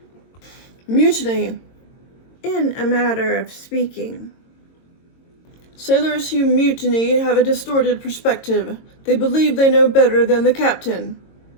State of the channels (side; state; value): right; late; 22 ms